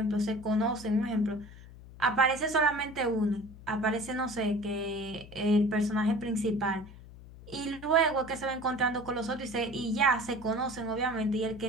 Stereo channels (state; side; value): noise; left; hum, 18 dB below the sound